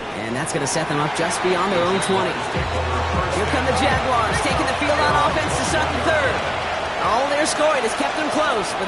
And that's going to set them up just beyond their own 20. Here come the Jaguars, taking the field on offense to start the third. All their scoring has kept them close, but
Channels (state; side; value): identical; both; correlation 1.00